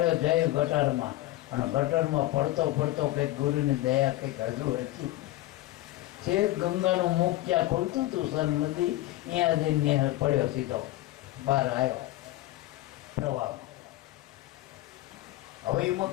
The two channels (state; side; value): quieter; right; 16.5 dB